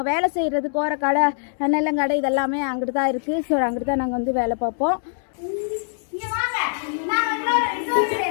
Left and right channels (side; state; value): right; silent; digital silence